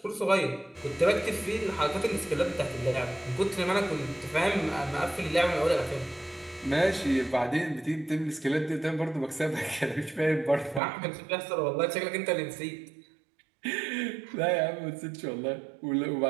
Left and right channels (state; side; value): drops out; left; at 10.8 s